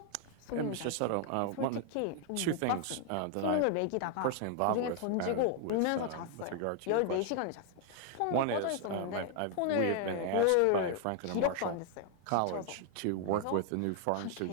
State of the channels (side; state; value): both; different; correlation 0.00